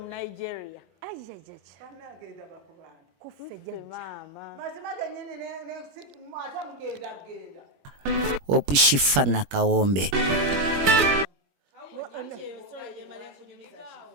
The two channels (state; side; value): late; left; 21 ms